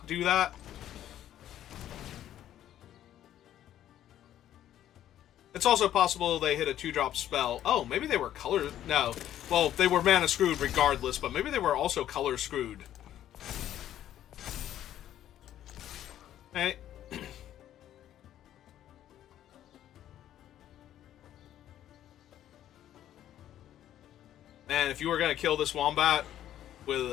do that. It's also possible they hit a 2-drop spell. Oh, maybe they were color... No. Well, they were mana screwed regardless, but maybe they were also color screwed. Hey. Man, if you were going to kill this Wombat with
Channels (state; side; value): quieter; right; 11.7 dB